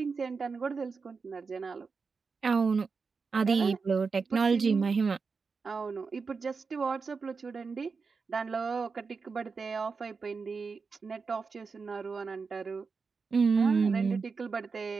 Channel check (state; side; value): quieter; left; 4.9 dB